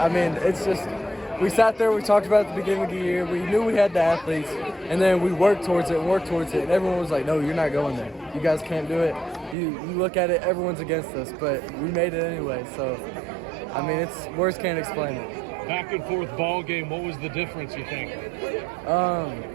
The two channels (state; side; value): drops out; left; at 9.6 s